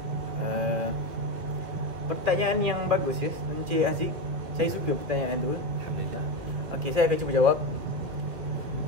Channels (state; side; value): late; left; 2.6 ms